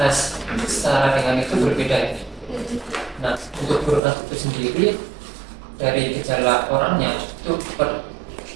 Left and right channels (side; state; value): left; drops out; at 4.0 s